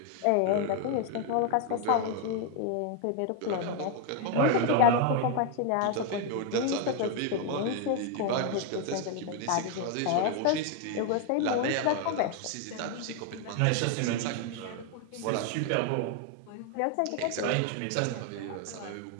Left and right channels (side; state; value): both; different; correlation 0.01